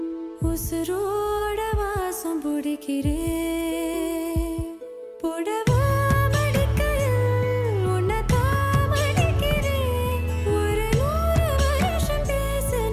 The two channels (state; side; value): identical; both; correlation 1.00